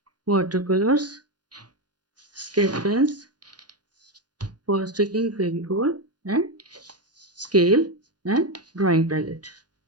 watercolors, sketch pens, for sticking Fevicol and scale and drawing palette.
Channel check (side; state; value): left; late; 0.69 ms